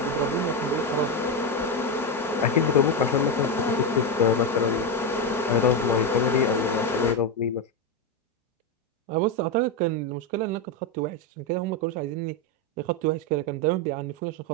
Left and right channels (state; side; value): normal; both; correlation 0.10